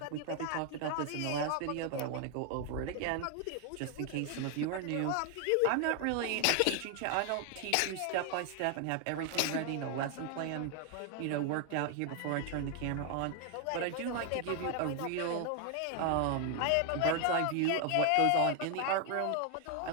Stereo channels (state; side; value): different; both; correlation 0.00